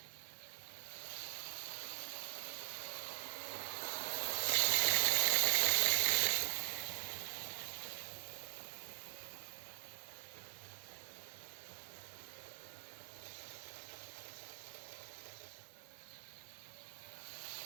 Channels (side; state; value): left; silent; digital silence